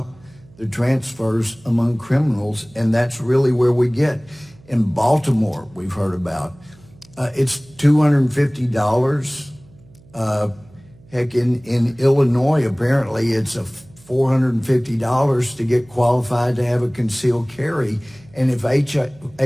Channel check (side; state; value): right; noise; hum, 26 dB below the sound